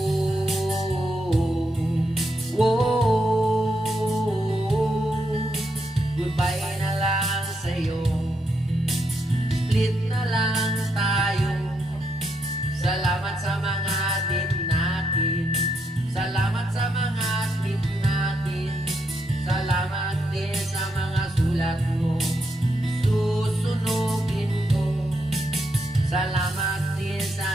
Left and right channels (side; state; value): both; normal; correlation 0.80